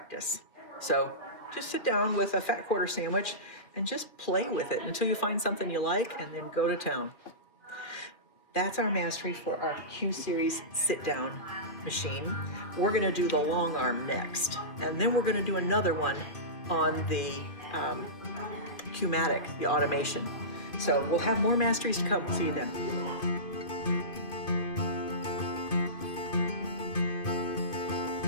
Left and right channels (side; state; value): right; late; 2.7 ms